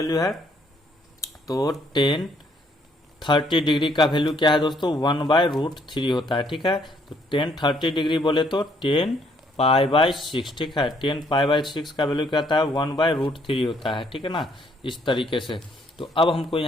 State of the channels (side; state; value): both; normal; correlation 0.67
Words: है, तो 30 डिग्री का वैल्यू क्या है दोस्तों, 1/√3 होता है, ठीक है। तो 30 डिग्री बोले तो 10π/6, ठीक है, 10π/6 का वैल्यू क्या होता है, 1/√3 होता है, ठीक है ना, इस तरीके से। तो अब हमको